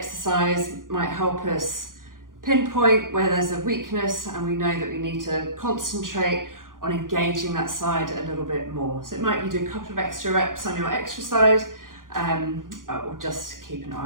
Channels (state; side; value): late; left; 0.90 ms